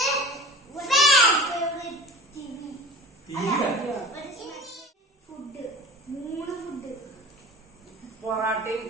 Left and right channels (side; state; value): both; normal; correlation 0.38